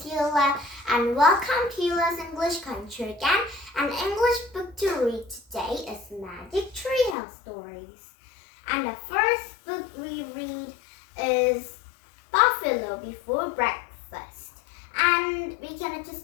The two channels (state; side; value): drops out; right; at 7.2 s